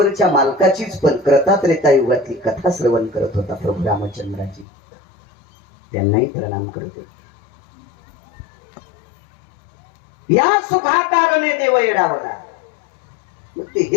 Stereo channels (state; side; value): drops out; right; at 4.7 s